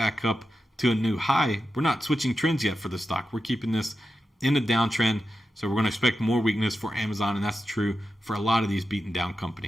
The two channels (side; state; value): both; normal; correlation 0.90